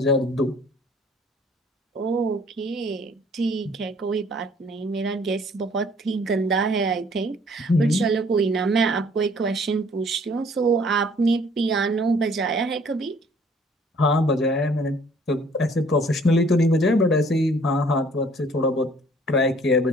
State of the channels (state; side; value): normal; both; correlation 0.57